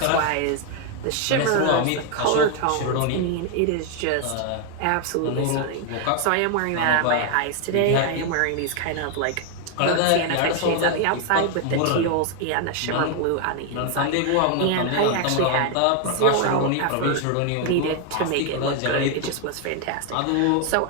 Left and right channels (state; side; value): different; both; correlation 0.01